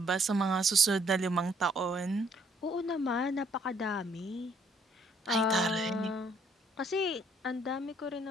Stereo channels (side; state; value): both; normal; correlation 0.65